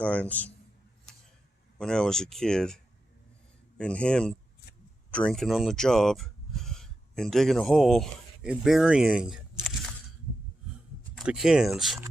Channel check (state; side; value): normal; both; correlation 0.89